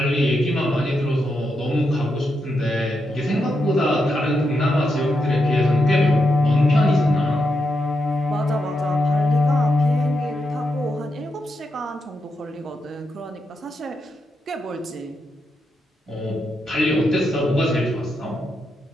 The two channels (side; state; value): both; normal; correlation 0.84